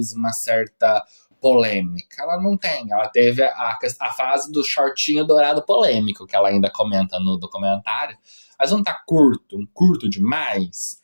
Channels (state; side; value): inverted; both; correlation -1.00